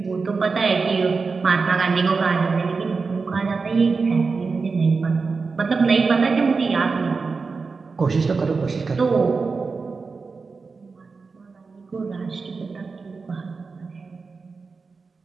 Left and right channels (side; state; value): left; quieter; 4.5 dB